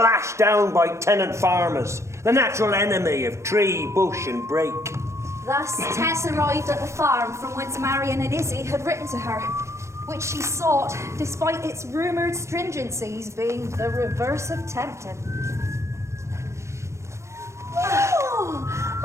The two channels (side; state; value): left; late; 0.14 ms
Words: down by tenant farmers, the natural enemy of tree, bush and brake. Thus, Tess arrived at the farm from whence Marion and Izzy had written to her, which she sought, despite its rumoured stringencies being the reverse of tempting. Oh,